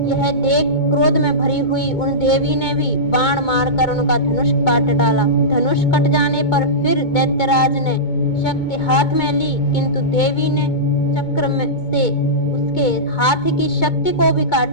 यह देख क्रोध में भरी हुई उन देवी ने भी बाण मारकर उनका धनुष काट डाला। धनुष कट जाने पर फिर दैत्यराज ने शक्ति हाथ में ली, किंतु देवी ने चक्र में से उसके हाथ की शक्ति को भी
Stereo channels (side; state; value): right; late; 2.2 ms